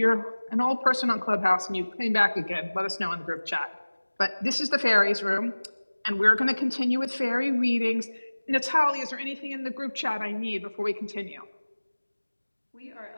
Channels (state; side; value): inverted; both; correlation -1.00